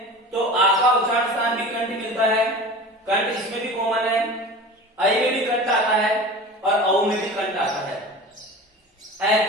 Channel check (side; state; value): both; normal; correlation 0.36